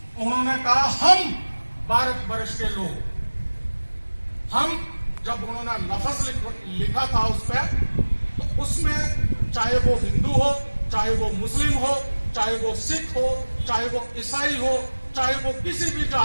उन्होंने कहा हम भारत वर्ष के लोग। हम जब उन्होंने लफ्ज लिखा था उस पर, तो उसमें चाहे वो हिंदू हो, चाहे वो मुस्लिम हो, चाहे वो सिख हो, चाहे वो ईसाई हो, चाहे वो किसी भी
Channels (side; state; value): both; inverted; correlation -1.00